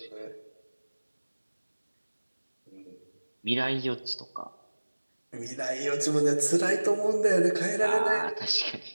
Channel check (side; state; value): both; inverted; correlation -1.00